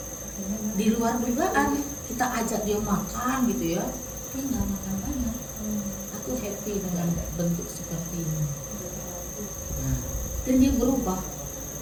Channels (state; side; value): identical; both; correlation 1.00